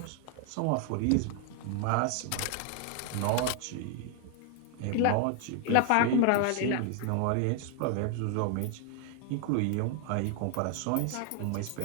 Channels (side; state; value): both; different; correlation 0.00